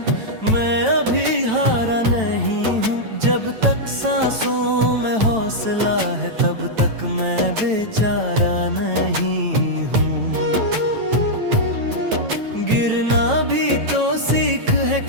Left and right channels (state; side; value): late; left; 9.1 ms